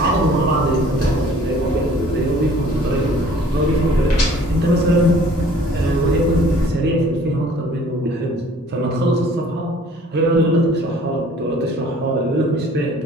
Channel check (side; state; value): both; normal; correlation 0.53